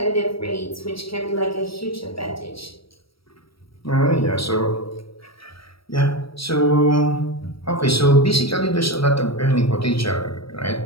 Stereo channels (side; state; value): right; late; 0.75 ms